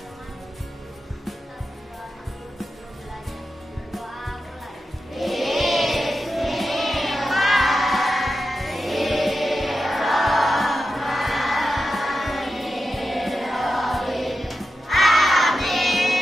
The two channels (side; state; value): both; normal; correlation 0.90